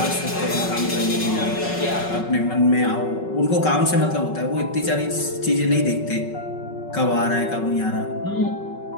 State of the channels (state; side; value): late; right; 5.4 ms